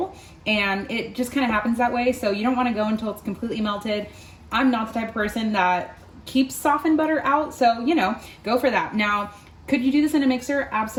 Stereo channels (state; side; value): identical; both; correlation 1.00